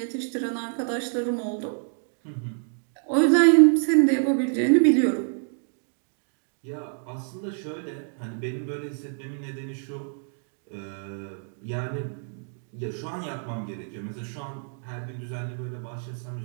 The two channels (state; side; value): silent; left; 60 dB below the other